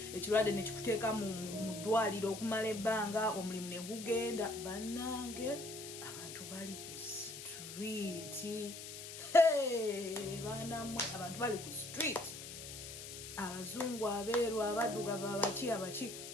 ne kikuteeka mu ddwaliro okumala ebbanga, omulimu ne gugenda. Bannange, abantu bali ku street. Baanamwe, abantu bali ku street. Abazungu, abeeru, abaddugavu, abaki,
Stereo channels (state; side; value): noise; left; hiss, 10 dB below the sound